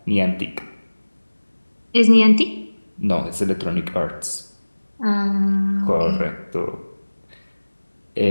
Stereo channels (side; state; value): both; inverted; correlation -1.00